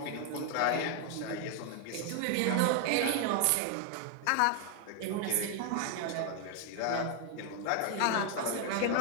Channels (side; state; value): both; different; correlation 0.00